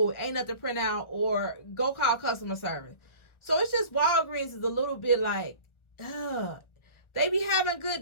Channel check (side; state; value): right; late; 1.4 ms